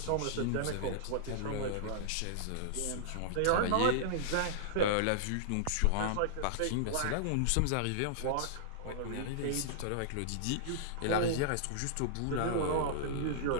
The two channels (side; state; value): both; different; correlation -0.01